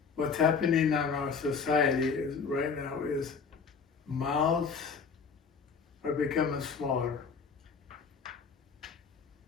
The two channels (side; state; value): right; quieter; 5.6 dB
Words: What's happening in our society is right now is mouths are becoming smaller